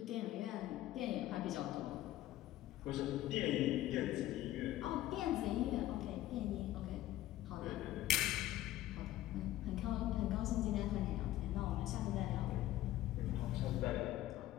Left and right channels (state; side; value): quieter; right; 14.7 dB